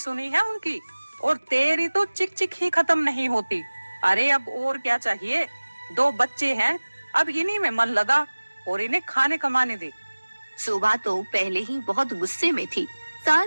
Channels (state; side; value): inverted; both; correlation -1.00